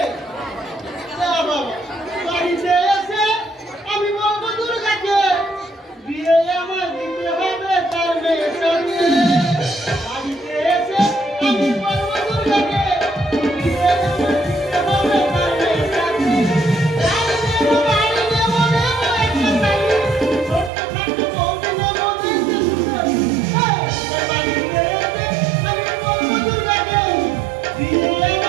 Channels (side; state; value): left; drops out; at 20.7 s